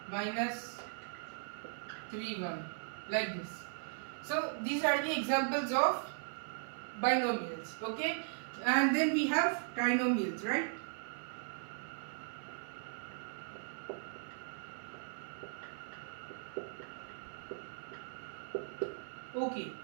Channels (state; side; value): silent; left; 52 dB below the other